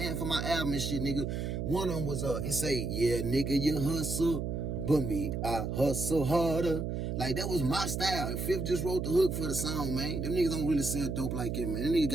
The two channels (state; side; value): noise; right; hum, 2 dB below the sound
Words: for my album and shit, nigga. One of them was, it say, yeah, nigga, you hustle, but me, I hustle harder. Like, that was my style. And Fifth just wrote the hook for the song, man. Them niggas don't really sell dope like it, man. Them niggas